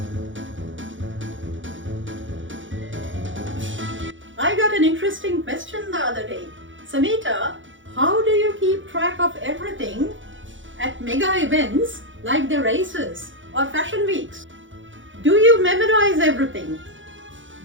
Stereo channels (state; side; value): late; left; 0.56 ms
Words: I got an interesting question the other day. Samita, how do you keep track of everything at mega events like the races or fashion weeks? Do you memorize everything?